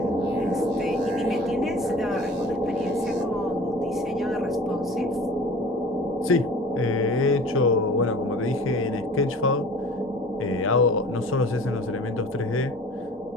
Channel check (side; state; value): both; normal; correlation 0.43